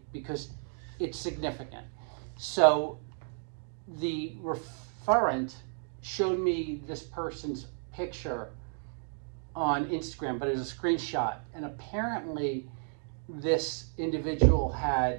because it's significant. So the referent showed me this person's picture on Instagram, but it was a screenshot. And apparently this individual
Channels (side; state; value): left; silent; 55 dB below the other